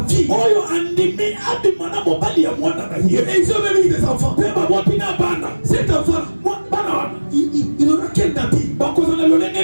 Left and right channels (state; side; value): inverted; both; correlation -1.00